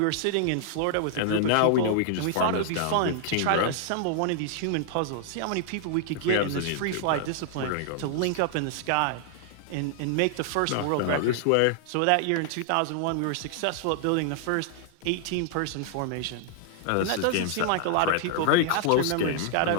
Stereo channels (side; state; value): both; different; correlation 0.00